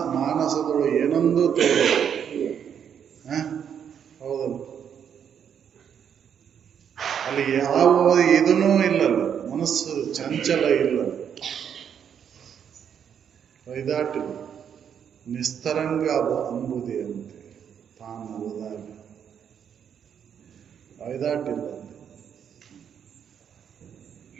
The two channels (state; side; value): quieter; left; 8.2 dB